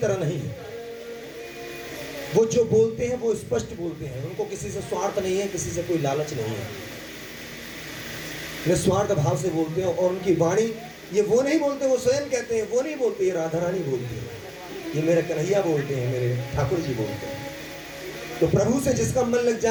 नहीं है। वो जो बोलते हैं वो स्पष्ट बोलते हैं, उनको किसी से स्वार्थ नहीं है, किसी से कोई लालच नहीं है, निस्वार्थ भाव से बोलते हैं। और उनकी वाणी, ये वो नहीं बोलते, वो स्वयं कहते हैं, वो नहीं बोलते, ये राधा रानी बोलती है, ये मेरे कन्हैया बोलते हैं, मेरे ठाकुर जी बोलते हैं। तो प्रभु से जिसका मन लग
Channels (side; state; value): both; identical; correlation 1.00